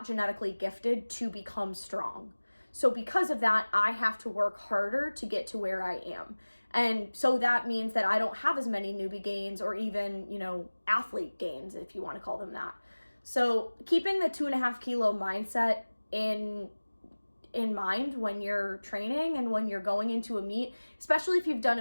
genetically gifted to become strong. So because of that, I have to work harder to get to where I am. And so that means that I don't have as many newbie gains or even, athlete gains, if you want to call them that. So keeping the 2.5 kilo mindset in mind when you're training and when you're going into a meet, especially if you've done a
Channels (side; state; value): both; inverted; correlation -1.00